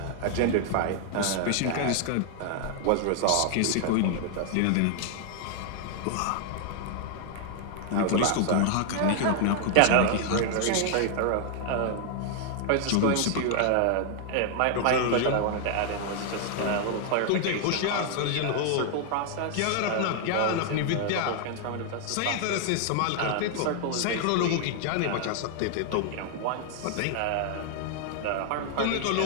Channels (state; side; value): different; both; correlation 0.00